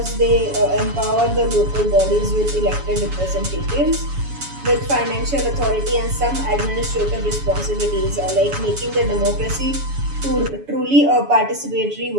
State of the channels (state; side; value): late; left; 7.1 ms